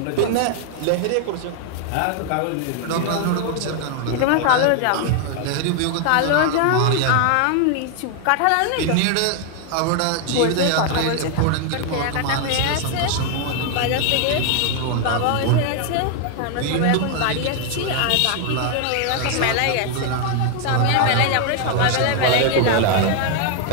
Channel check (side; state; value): both; different; correlation 0.00